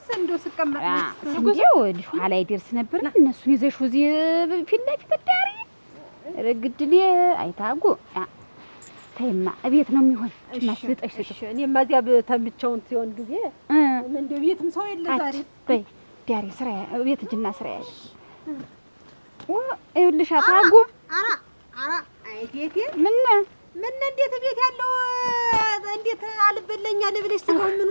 እንደው ስቀመጥ እንደው ልጅ ኋላ ይደርስ ነበር። እነሱን ይዘሽ እዚህ ፊት ለፊት ዳሪ ረግድል አይታጉ ተይማ እቤት ነው የሚሆን ማስልጠሽ ስጭ። እኔማ እዚያ ተምቸውን ሲሆን ጊዜ እንደው ቤትም ሰው የለ ዛሬ በይ ዳሪ ስራ ቤት እጅና ስራ ያሽ ይኸውልሽ ታጉ አይቴቴ ምን እንዴት ቤት ያለው እንዴት አልበለኛ ልብለሽ ስጋው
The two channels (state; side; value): inverted; both; correlation -1.00